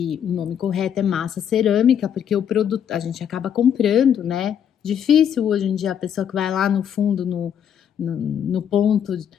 o nome correto é massa cerâmica, porque o produto a gente acaba comprando, né? Difícil hoje em dia a pessoa que vai lá no fundo, no ponto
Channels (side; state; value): right; quieter; 8.8 dB